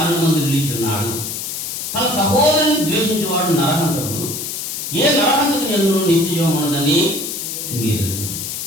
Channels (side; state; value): left; noise; hiss, 5 dB below the sound